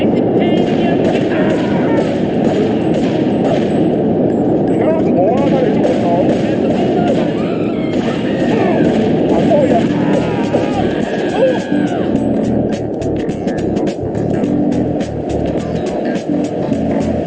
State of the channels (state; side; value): identical; both; correlation 1.00